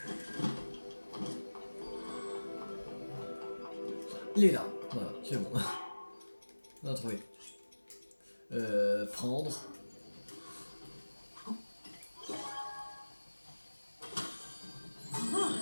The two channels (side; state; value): both; inverted; correlation -1.00